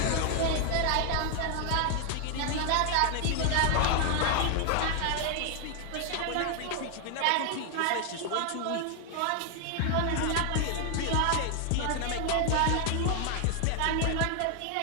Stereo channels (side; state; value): both; different; correlation 0.00